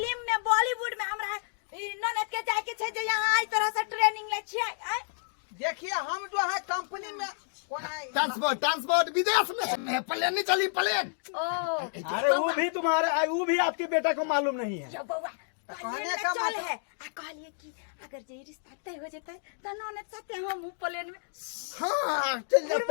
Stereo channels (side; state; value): right; silent; digital silence